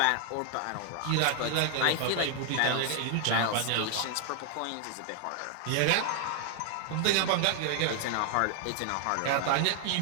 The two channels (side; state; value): both; different; correlation 0.00